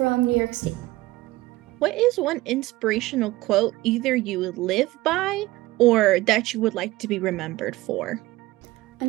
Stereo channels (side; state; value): left; quieter; 18.6 dB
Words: New York State. What is one inspirational quote either you live by or that you would like to be remembered for?